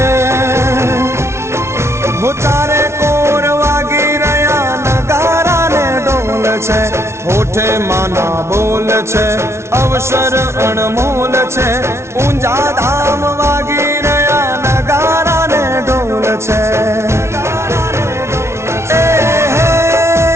હો ચારે કોર વાગી રહ્યા નગારા ને ઢોલ છે, હોઠે માના બોલ છે, અવસર અણમોલ છે, ઊંઝા ધામ વાગી રહ્યા નગારા ને ઢોલ છે.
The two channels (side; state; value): left; late; 0.13 ms